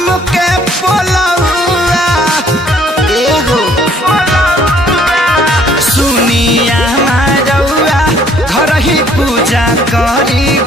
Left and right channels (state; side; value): normal; both; correlation 0.61